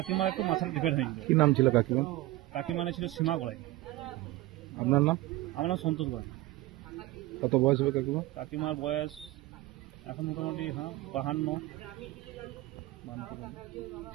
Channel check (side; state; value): left; quieter; 17.8 dB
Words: একটু মাথাটা ডিফেক্ট হয়েছিল। কি নাম ছিল কাকিমা? কাকিমা ছিল সীমা গড়াই। আপনার নাম? আমার নাম সন্তোষ গড়াই। কত বয়স হবে কাকিমা? কাকিমার বয়স এখন মোটামুটি 52।